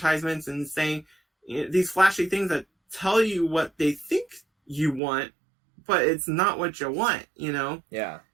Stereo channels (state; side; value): drops out; left; at 5.0 s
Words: and saying these flashy things that tell you what they think you want, but it's not what you want, Yeah.